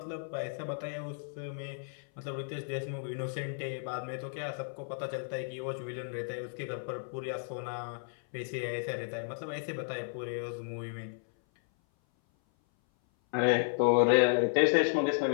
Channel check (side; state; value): right; silent; 56 dB below the other